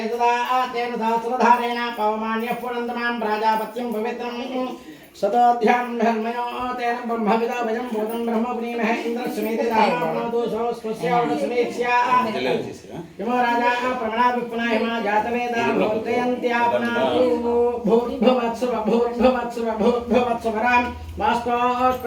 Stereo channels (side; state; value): both; identical; correlation 1.00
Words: सदा तेन सहस्रधारेण पवमान्यः पुनन्दमां प्राजापत्यं पवित्रं सदाध्यां धर्मयो तेन ब्रह्मविदाभयं भूतं ब्रह्मपुनीमहे इन्द्रस्वमेते दाहनापनोतु स्वस्यावसमेत्स्या यमो राजा प्रमणाभिपुनाहिमा जातवेदा भूर्जयन्त्यापनातु भूर्भुवत्सुवरां